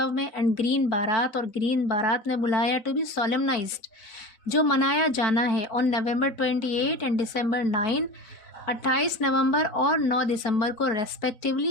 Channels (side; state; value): right; late; 4.0 ms